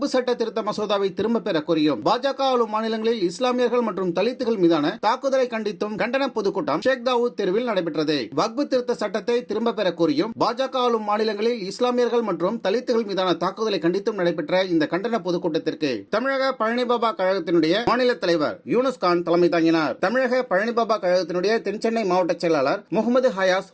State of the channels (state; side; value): identical; both; correlation 1.00